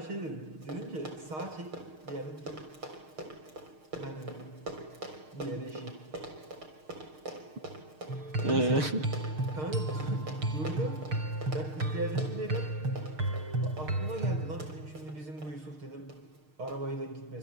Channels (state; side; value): late; left; 6.5 ms